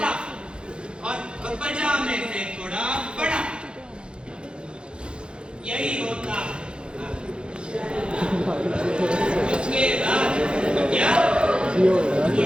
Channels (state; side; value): late; left; 0.054 ms